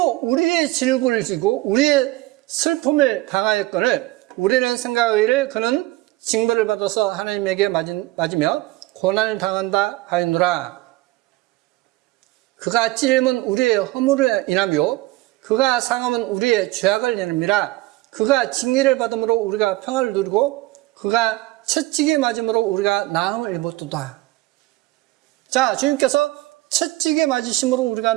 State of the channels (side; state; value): left; quieter; 19.2 dB